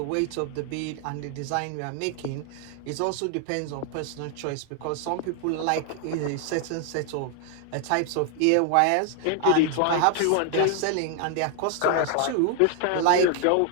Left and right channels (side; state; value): both; different; correlation 0.00